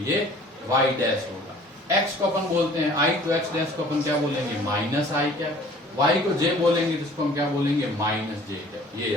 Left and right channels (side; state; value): both; normal; correlation 0.51